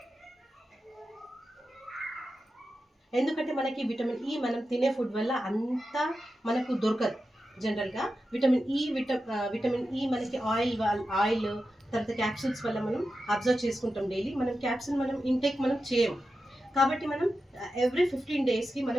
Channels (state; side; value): normal; both; correlation 0.91